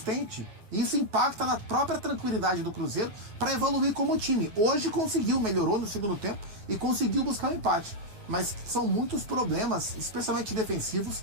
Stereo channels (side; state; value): left; late; 9.5 ms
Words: Isso impacta na própria tranquilidade do Cruzeiro para evoluir como time. Hoje conseguiu, melhorou no segundo tempo e conseguiu buscar um empate. Mas são muitos problemas, especialmente defensivos,